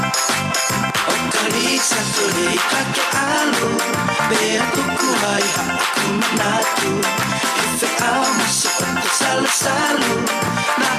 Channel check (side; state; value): both; identical; correlation 1.00